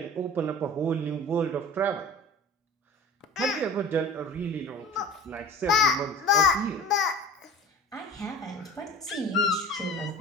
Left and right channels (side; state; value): both; normal; correlation 0.39